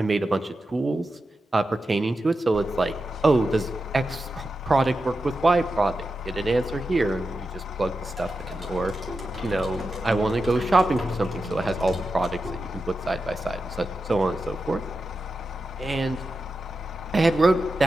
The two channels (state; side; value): normal; both; correlation 0.90